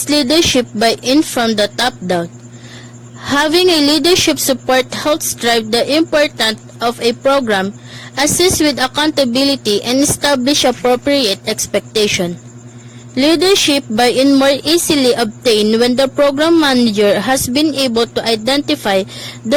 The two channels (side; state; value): both; identical; correlation 1.00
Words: leadership buy-in from the top down. Having a leadership support helps drive the importance of a program, assist with accountability, and establish appropriate expectation. Leadership buy-in more easily obtained when the program manager has been able to identify